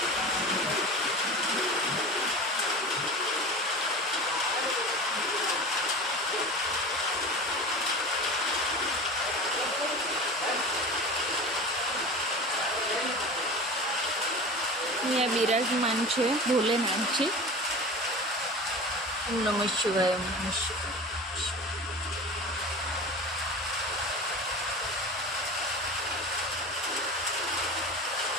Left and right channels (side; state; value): both; normal; correlation 0.33